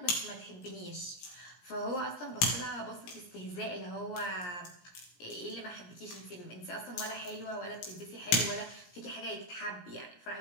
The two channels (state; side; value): late; right; 17 ms